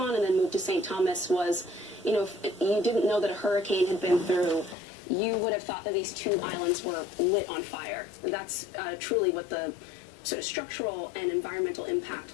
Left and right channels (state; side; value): drops out; right; at 4.8 s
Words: and then moved to St. Thomas was, if you didn't know that a hurricane had been through, you would have thought that these two islands were lit on fire. That's truly what the sort of structural and environmental